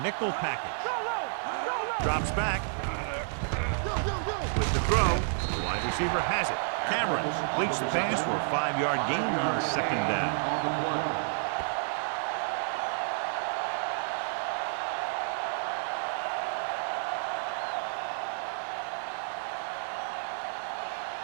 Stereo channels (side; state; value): left; silent; digital silence